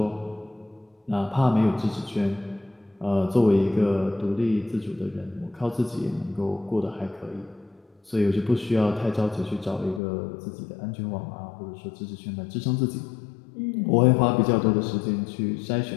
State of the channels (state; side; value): drops out; right; at 10.0 s